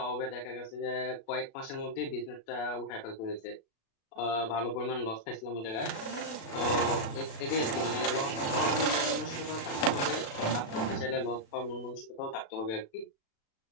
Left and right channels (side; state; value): right; late; 36 ms